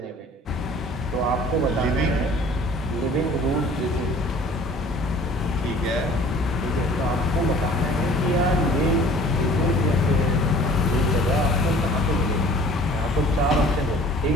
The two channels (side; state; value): both; normal; correlation 0.49